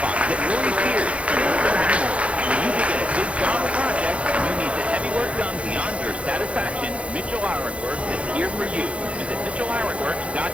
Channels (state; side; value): late; left; 0.062 ms